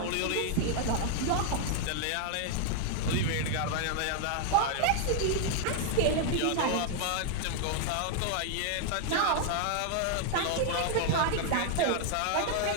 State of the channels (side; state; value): both; different; correlation 0.00